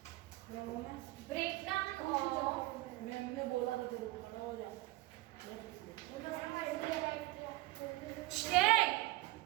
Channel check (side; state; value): left; quieter; 19.3 dB